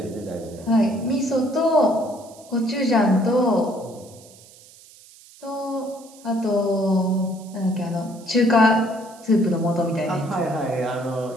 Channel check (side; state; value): right; noise; hiss, 23 dB below the sound